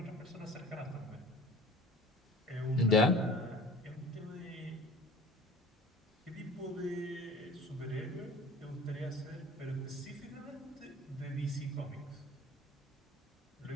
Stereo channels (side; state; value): both; normal; correlation 0.44